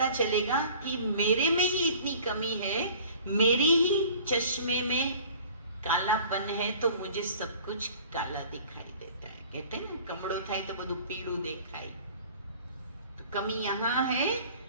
चलेगा कि मेरे में ही इतनी कमी है, मेरी ही चश्मे में कालापन है, तो मुझे सब कुछ काला दिखाई देता है। कहते हैं ना, कमड़ो थाय तो बधु पीड़ू देखाई। तो कमी यहाँ है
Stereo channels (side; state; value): both; inverted; correlation -0.48